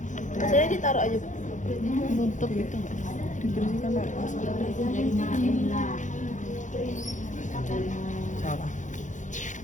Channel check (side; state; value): right; late; 0.36 ms